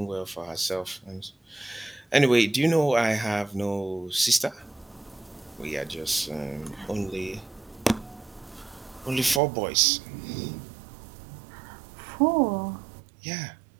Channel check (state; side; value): drops out; left; at 9.4 s